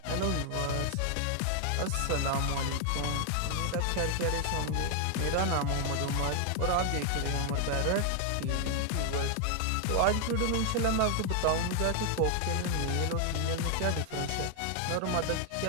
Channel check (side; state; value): both; different; correlation 0.00